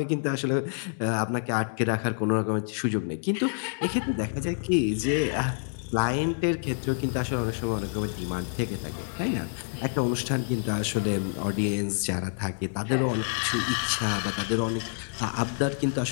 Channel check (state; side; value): silent; right; digital silence